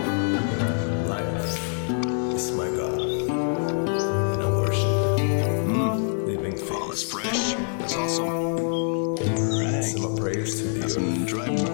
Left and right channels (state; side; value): silent; right; digital silence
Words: Life is my God, and I worship living things. Oh, that's fresh. That's awesome. Right. Some prayers to the some dry